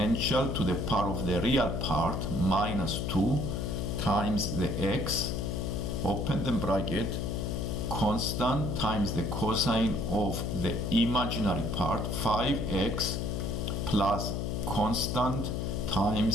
to the power of the real part minus 2 times the x, open the bracket, constant times the cosine of the imaginary part 5x plus constant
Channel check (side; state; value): left; noise; hum, 1 dB below the sound